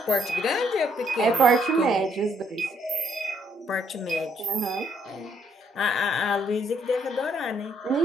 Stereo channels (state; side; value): normal; both; correlation 0.70